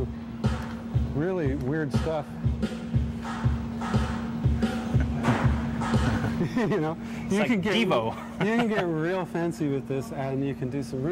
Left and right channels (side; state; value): both; identical; correlation 1.00